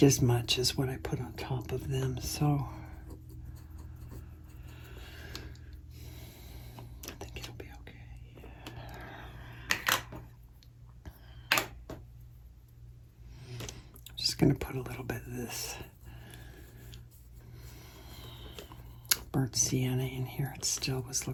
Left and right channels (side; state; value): both; identical; correlation 1.00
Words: as much as what I put on top of them. So I think it'll be okay. I'm just going to put a little bit of this burnt sienna in here. It still was